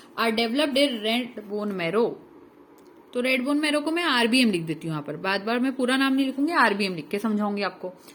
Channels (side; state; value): both; identical; correlation 1.00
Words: are developed in red bone marrow. तो रेड बोन मैरो को मैं आरबीएम लिख देती हूँ यहाँ पर, बार बार मैं पूरा नाम नहीं लिखूंगी, आरबीएम लिख के समझाऊंगी आपको।